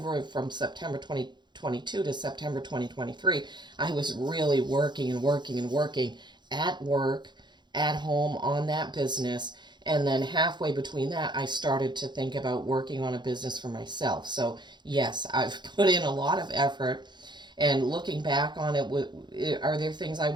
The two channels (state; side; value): late; left; 0.21 ms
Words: from September 2022 to September 2023, I was really working and working and working at work, at home, on that business. And then halfway between that, I started to think about working on a business for myself. So yes, I've put in a lot of effort, and looking back on it, are there things I